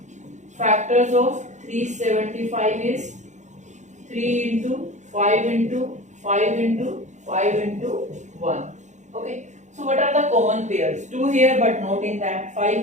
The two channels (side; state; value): left; late; 0.35 ms